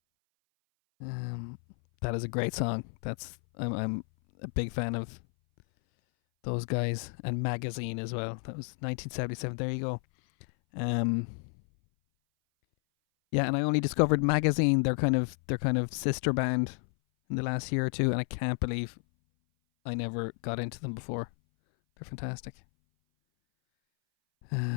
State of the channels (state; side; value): silent; right; 57 dB below the other